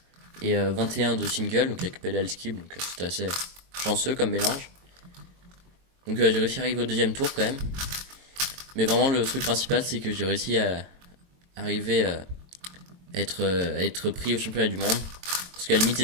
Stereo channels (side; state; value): left; late; 22 ms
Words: et 21 de single, donc avec pedal skip, donc c'était assez chanceux comme mélange. Donc j'ai réussi à arriver au deuxième tour quand même. Mais vraiment le truc principal c'est que j'ai réussi à arriver à être pris au championnat du monde. Parce qu'à la limite